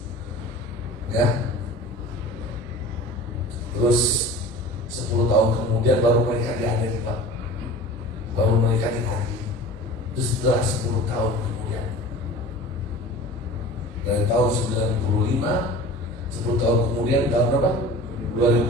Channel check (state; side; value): normal; both; correlation 0.39